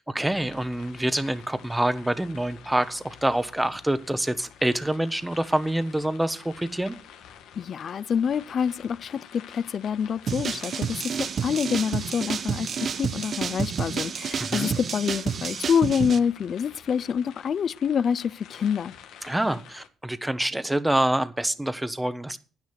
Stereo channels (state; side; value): normal; both; correlation 0.86